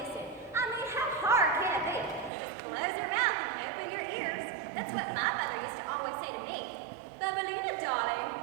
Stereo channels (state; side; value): drops out; left; at 2.3 s